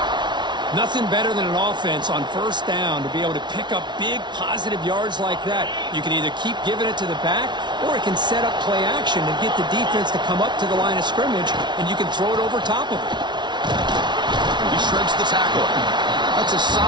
Nothing better than an offense on first down to be able to pick up big positive yards like that. You can either keep giving it to the back, or it can set up play action and get the defense to come up to the line of scrimmage, and you can throw it over top of it. He shreds the tackle. That's a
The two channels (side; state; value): left; late; 0.21 ms